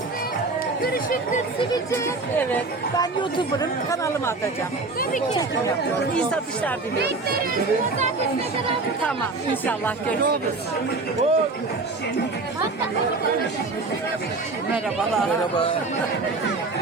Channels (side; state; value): left; quieter; 3.6 dB